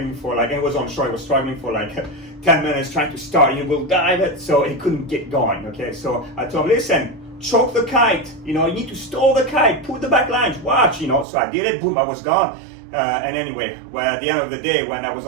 for like, and it was on shore, he was struggling for like 10 minutes trying to start. He will dive it, so he couldn't get going. Okay, so I told him, listen, choke the kite, you need to stall the kite, put the back lines, watch, so I did it, boom, I was gone. And anyway, well, at the end of the day, when I was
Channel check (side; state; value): left; drops out; at 11.2 s